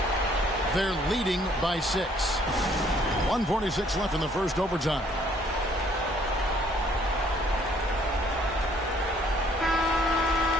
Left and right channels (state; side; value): normal; both; correlation 0.62